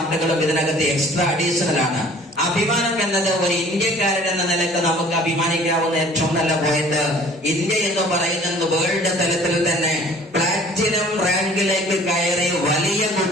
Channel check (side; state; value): both; normal; correlation 0.50